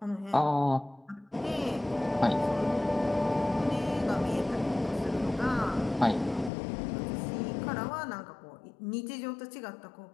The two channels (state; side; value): drops out; right; at 6.5 s